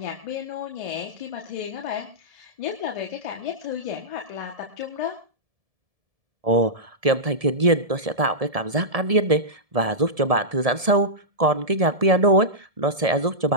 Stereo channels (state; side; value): late; left; 1.7 ms